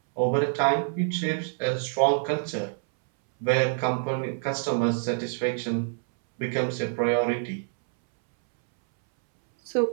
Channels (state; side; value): silent; left; 61 dB below the other